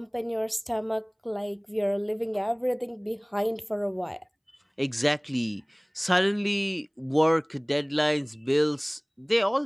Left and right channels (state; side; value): identical; both; correlation 1.00